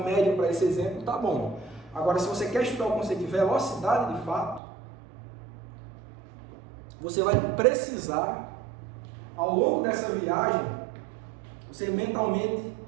média para esse exemplo está bom. Agora, se você quer estudar o conceito de velocidade de fato, você vai precisar, ao longo dessa viagem, você mentalmente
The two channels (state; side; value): drops out; left; at 4.6 s